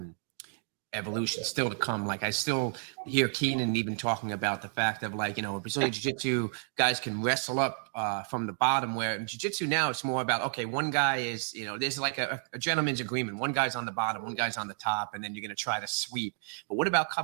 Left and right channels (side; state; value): left; silent; digital silence